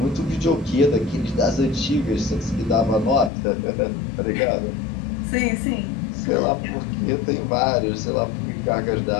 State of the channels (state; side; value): drops out; right; at 3.3 s